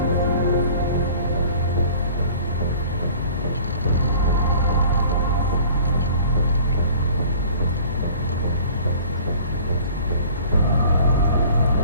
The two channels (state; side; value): inverted; both; correlation -0.48